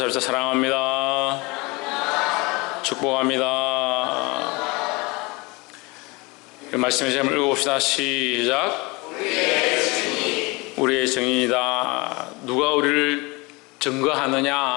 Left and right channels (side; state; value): right; quieter; 25.6 dB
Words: 사랑합니다. 축복합니다. 말씀의 제목을 읽어봅시다. 시작. 우리의 증인이다. 누가 우리를